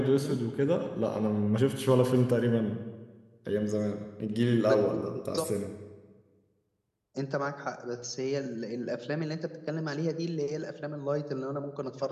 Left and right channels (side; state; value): both; identical; correlation 1.00